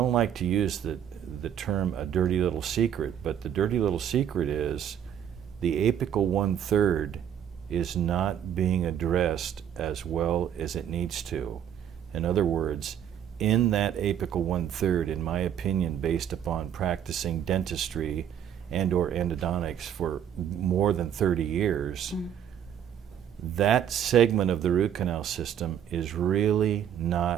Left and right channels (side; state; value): left; quieter; 9.5 dB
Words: like to use the term a dirty little secret, but the dirty little secret is the apical 1/3 is not being addressed as well as it needs to. In other words, in that apical 1/3, in my opinion, based upon practicing dentistry and or endodontics for more than 30 years, that segment of the root canal system is really